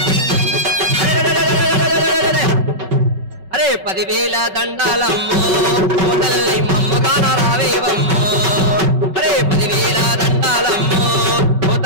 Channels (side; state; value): left; late; 5.3 ms